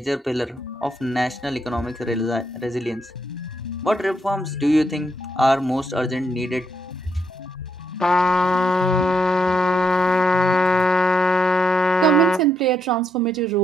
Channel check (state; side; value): normal; both; correlation 0.78